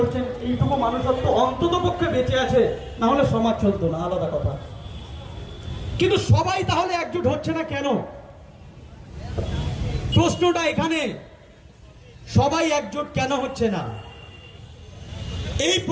এইটুকু মানুষত্ব অন্তত পক্ষে বেঁচে আছে, না হলে সমাজ চলতো না, আলাদা কথা। কিন্তু সবাই তাহলে একজোট হচ্ছে না কেন? প্রশ্নটা এখানে, সবাই একজোট কেন হচ্ছে না? এই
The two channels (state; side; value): identical; both; correlation 1.00